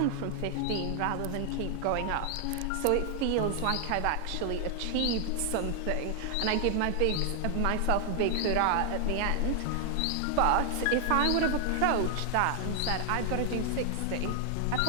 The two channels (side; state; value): both; different; correlation 0.00